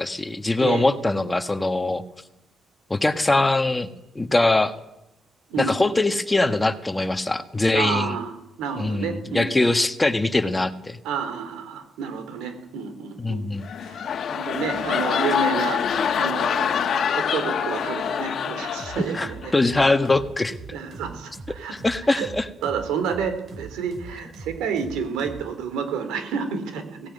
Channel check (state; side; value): normal; both; correlation 0.83